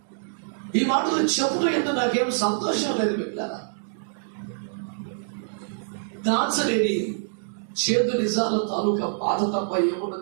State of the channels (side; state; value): left; silent; digital silence